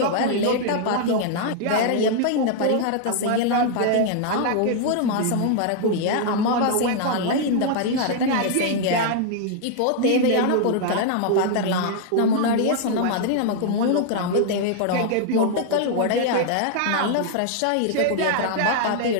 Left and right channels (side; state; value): both; different; correlation 0.00